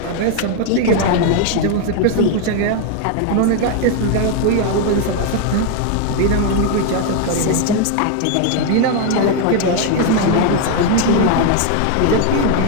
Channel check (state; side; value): different; both; correlation 0.01